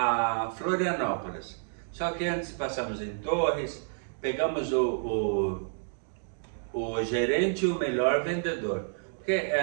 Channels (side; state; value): left; silent; digital silence